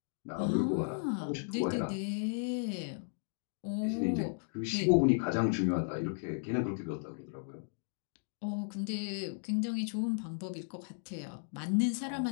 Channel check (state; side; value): silent; right; digital silence